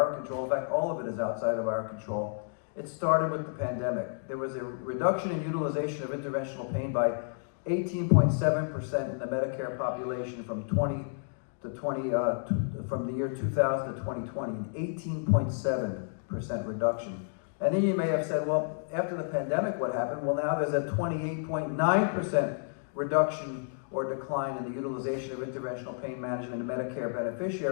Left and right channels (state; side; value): silent; right; digital silence